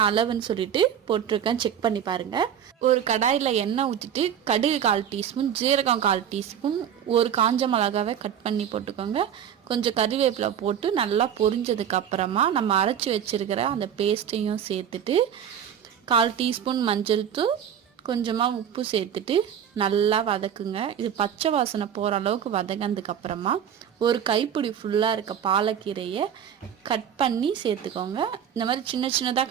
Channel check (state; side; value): quieter; left; 9.0 dB